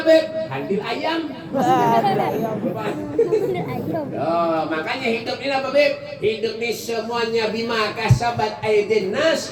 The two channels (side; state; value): both; identical; correlation 1.00